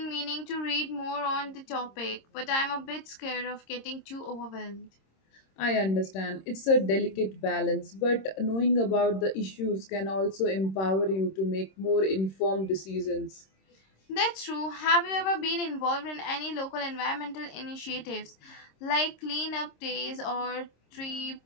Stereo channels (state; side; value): late; right; 26 ms